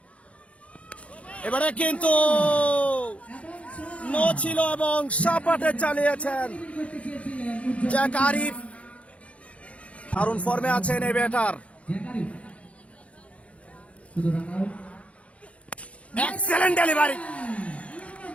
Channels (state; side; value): late; right; 0.063 ms